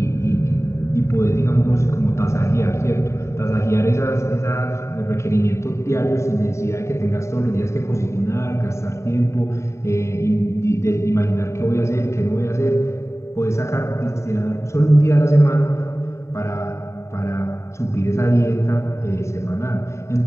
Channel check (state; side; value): late; right; 0.14 ms